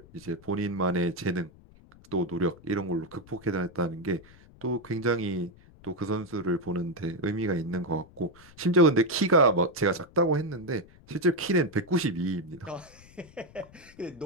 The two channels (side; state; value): left; noise; rumble, 24 dB below the sound